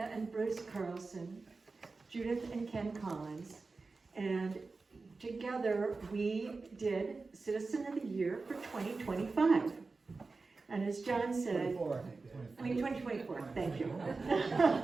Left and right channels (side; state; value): left; quieter; 3.9 dB